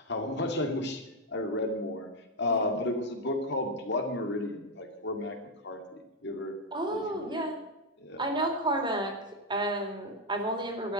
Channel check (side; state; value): both; normal; correlation 0.04